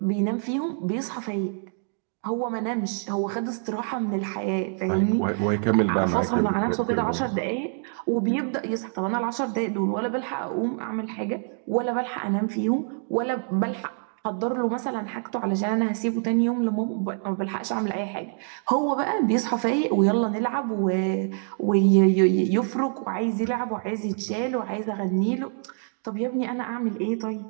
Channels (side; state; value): left; silent; 57 dB below the other